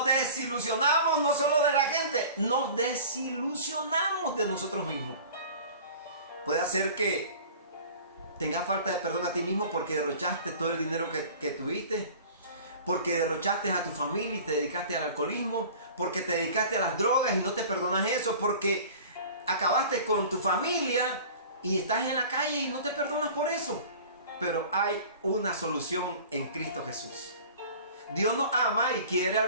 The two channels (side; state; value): both; inverted; correlation -0.42